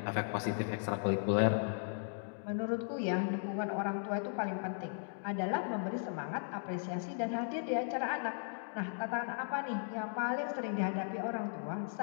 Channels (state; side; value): silent; right; digital silence